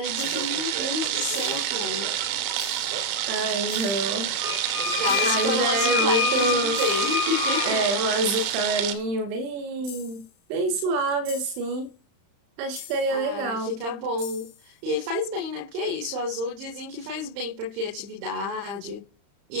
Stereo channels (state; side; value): late; left; 35 ms